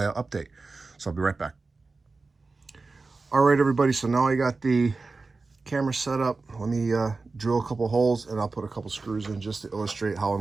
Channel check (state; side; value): quieter; left; 3.9 dB